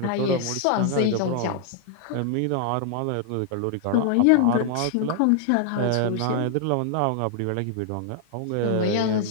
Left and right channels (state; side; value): different; both; correlation 0.00